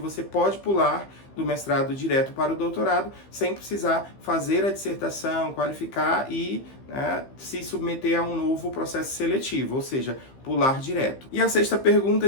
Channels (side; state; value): right; late; 15 ms